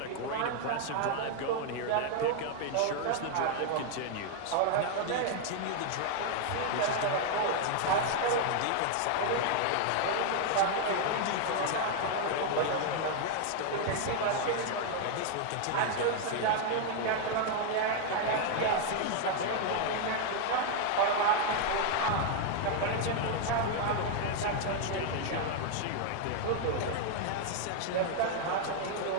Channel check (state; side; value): different; both; correlation 0.00